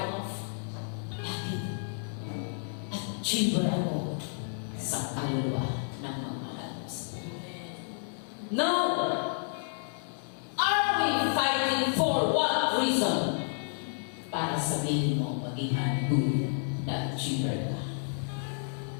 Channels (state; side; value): silent; right; digital silence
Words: off. Bakit? Achiever ako sa kaluluwa ng mga mahalos. Now, are we fighting for what reason? Para sabihin mo, maging good na achiever ka.